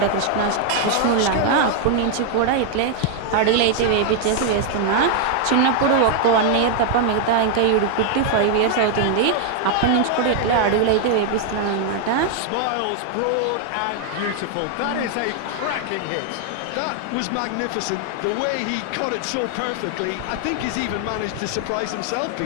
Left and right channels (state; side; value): different; both; correlation 0.00